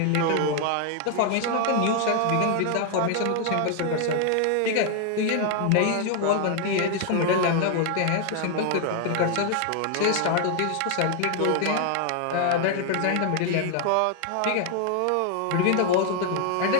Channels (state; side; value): different; both; correlation 0.00